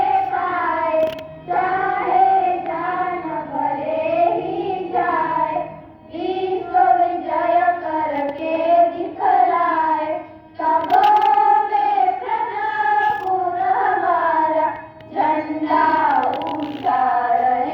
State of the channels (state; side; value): identical; both; correlation 1.00